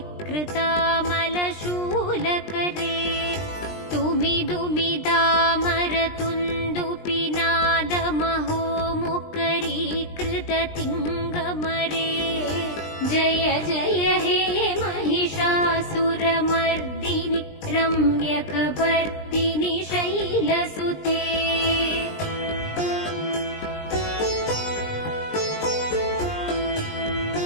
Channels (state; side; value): late; right; 20 ms